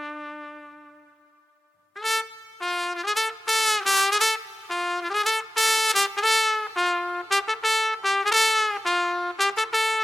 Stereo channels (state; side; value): normal; both; correlation 0.94